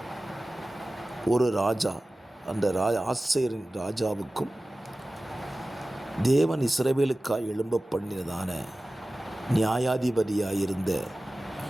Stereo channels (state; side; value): normal; both; correlation 0.96